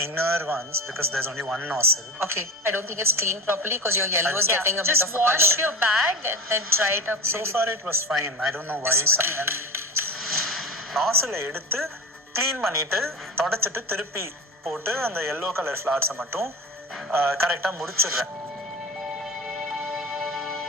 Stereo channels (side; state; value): both; normal; correlation 0.27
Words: inner ones because there's only one nozzle. Okay, I don't think it's cleaned properly because your yellow is getting a bit just of a wash color. your bag and then dry it up. So far it was fine. I don't know why. nozzle எடுத்து க்ளீன் பண்ணிட்டு தொடச்சிட்டு திருப்பி போட்டு அந்த yellow color flowers மட்டும் கரெக்டாக முடிச்சிடுறேன்.